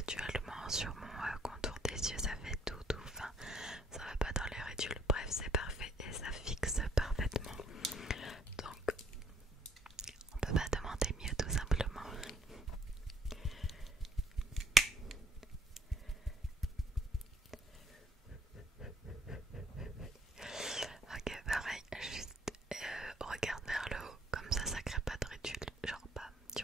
sur mon contour des yeux, ça fait tout fin. Ça va pas dans les ridules, bref c'est parfait et ça fixe parfaitement. Donc on peut pas demander mieux tout simplement. Ok, pareil, juste regarde vers le haut, comme ça crée pas de ridules. Genre pas, tu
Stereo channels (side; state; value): both; normal; correlation 0.63